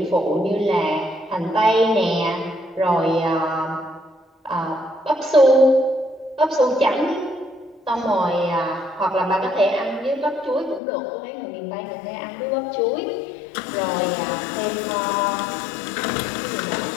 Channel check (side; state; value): right; drops out; at 10.8 s